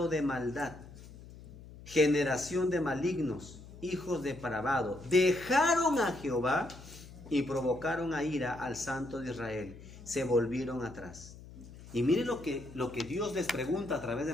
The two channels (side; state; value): left; noise; hum, 17 dB below the sound